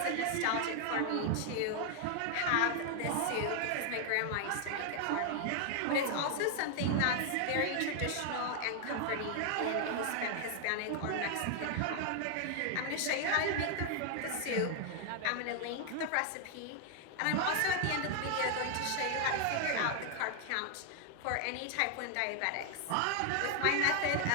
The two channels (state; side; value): different; both; correlation 0.00